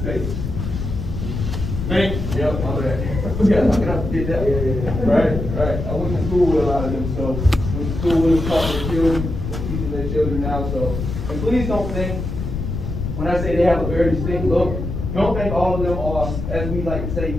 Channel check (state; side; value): noise; left; rumble, 4 dB below the sound